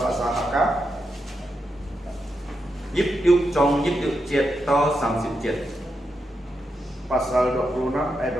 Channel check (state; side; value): normal; both; correlation 0.85